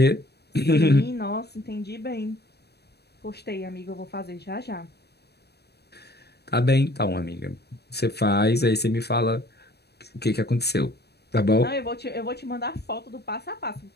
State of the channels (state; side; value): late; right; 0.47 ms